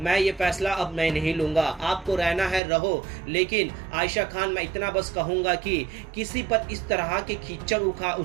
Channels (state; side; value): drops out; left; at 2.6 s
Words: ये फैसला अब मैं नहीं लूंगा, आपको रहना है रहो, लेकिन आयशा खान मैं इतना बस कहूंगा कि किसी पर इस तरह के कीचड़